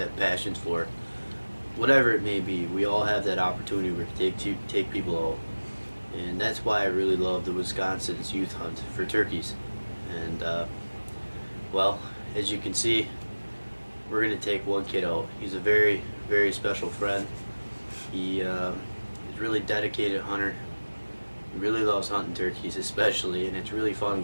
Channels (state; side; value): inverted; both; correlation -1.00